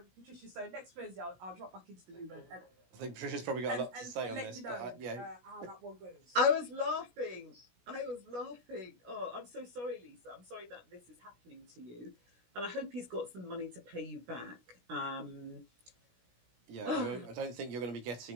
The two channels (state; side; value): late; left; 17 ms